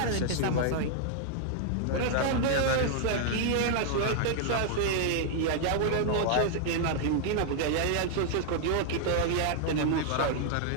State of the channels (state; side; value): different; both; correlation -0.01